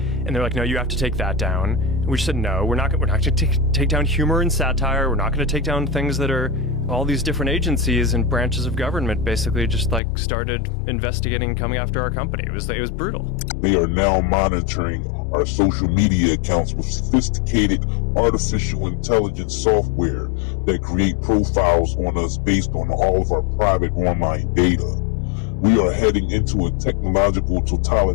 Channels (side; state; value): right; drops out; at 10.0 s